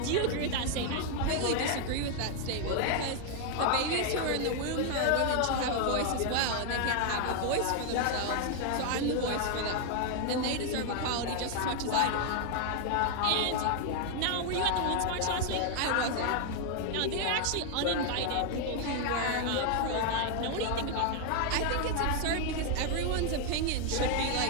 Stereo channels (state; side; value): different; both; correlation 0.00